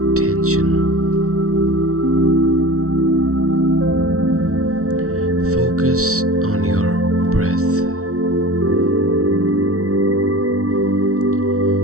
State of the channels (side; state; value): left; late; 0.64 ms